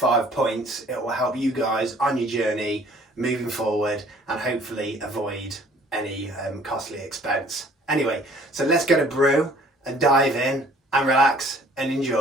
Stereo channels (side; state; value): both; normal; correlation 0.55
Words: points, it will help you guys on your journey moving forward and hopefully avoid any costly expense. Anyway, so let's get a brew and dive in and relax and